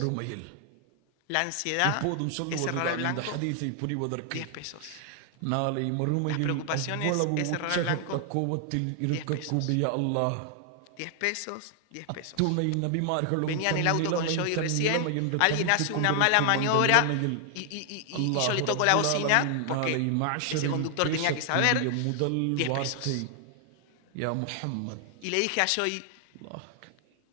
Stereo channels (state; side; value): different; both; correlation 0.00